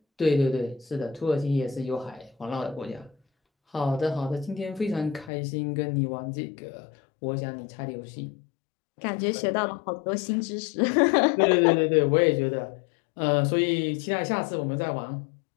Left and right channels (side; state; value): right; drops out; at 5.3 s